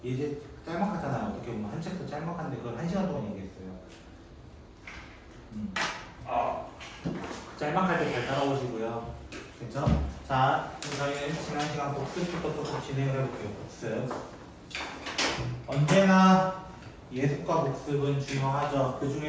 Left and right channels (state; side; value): identical; both; correlation 1.00